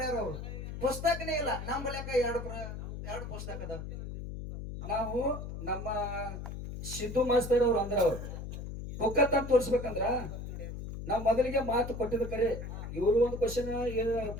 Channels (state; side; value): noise; left; hum, 8 dB below the sound